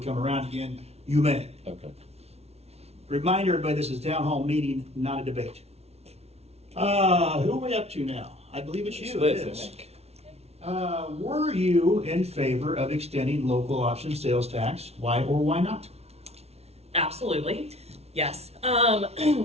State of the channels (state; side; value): late; left; 0.31 ms